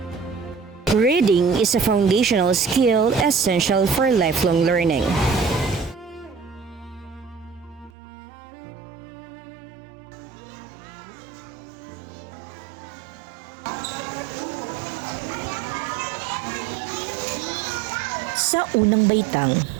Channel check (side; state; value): left; drops out; at 7.9 s